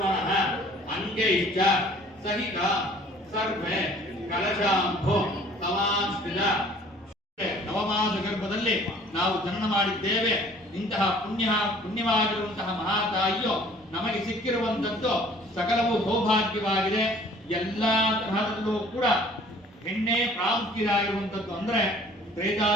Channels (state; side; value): normal; both; correlation 0.53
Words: ಅಂಗೈಶ್ಚ ಸಹಿತ ಸರ್ವೆ ಕಲಶಾಂಭೋ ಸಮಾಸ್ಥಿತ ನವಮಾಸ ಗರ್ಭದಲ್ಲಿ ನಾವು ಜನನ ಮಾಡಿದ್ದೇವೆ. ಇಂತಹ ಪುಣ್ಯವಾಗಿರುವಂತಹ ಮಹಾತಾಯಿಯು ನಮಗೆ ಸಿಕ್ಕಿರುವಂತದ್ದು ಸಕಲವೂ ಸೌಭಾಗ್ಯವಾಗಿದೆ. ಎಲ್ಲಾ ತರಹದಲ್ಲೂ ಕೂಡ ಹೆಣ್ಣೆ ಪ್ರಾಮುಖ್ಯವಾಗಿರುವಂತದ್ದು. ಅಂದ್ರೆ